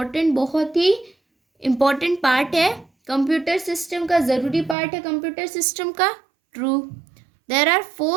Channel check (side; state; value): left; drops out; at 4.8 s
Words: इम्पॉर्टेंट पार्ट है कंप्यूटर सिस्टम का, ज़रूरी पार्ट है कंप्यूटर सिस्टम का। True. There are